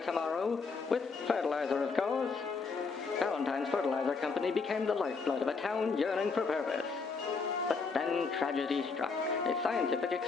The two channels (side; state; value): right; quieter; 4.7 dB